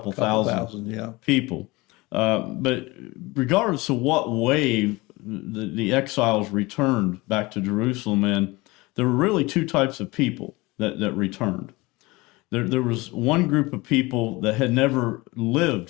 thousand people. But regardless of what wave the exiles returned back to Jerusalem in, there were really two types of people that returned. There was one group of people that had never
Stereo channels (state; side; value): quieter; right; 22.8 dB